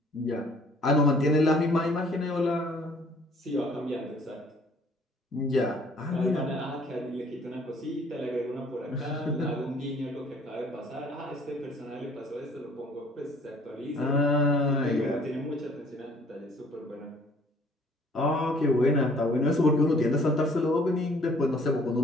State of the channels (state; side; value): normal; both; correlation 0.57